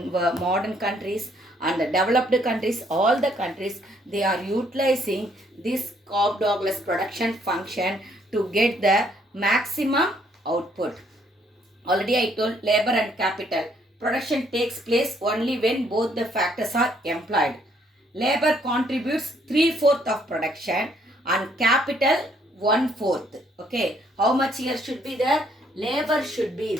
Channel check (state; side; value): normal; both; correlation 0.67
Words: countries and the developed countries, all the countries, they are utilizing this Cobb-douglas production function to get the maximum output. Already I told labor and capital. Production takes place only when both the factors are employed. Labor contributes 3/4 of production and capital 1/4. Okay. How much here should be there? Labor should be